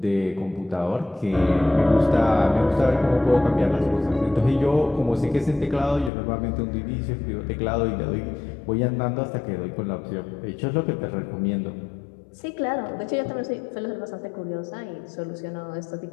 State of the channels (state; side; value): drops out; right; at 6.1 s